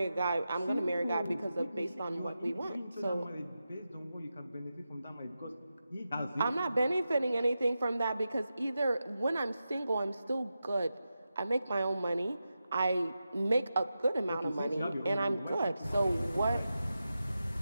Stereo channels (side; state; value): both; inverted; correlation -0.90